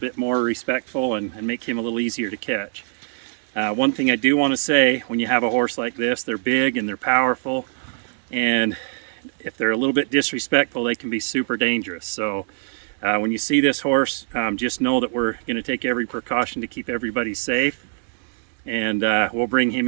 more respectful and make him a little easier to catch. One thing I do want to say, when you have a horse like this, they're big and they're powerful, and if they're a little bit disrespectful, they can be super dangerous. So when you see this horse, just know that we're going to take every precaution to keep everybody safe, and we'll bring him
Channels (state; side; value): silent; left; 64 dB below the other